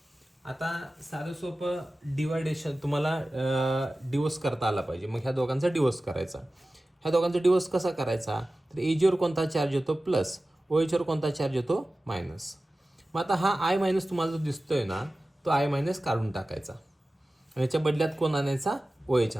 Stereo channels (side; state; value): both; normal; correlation 0.96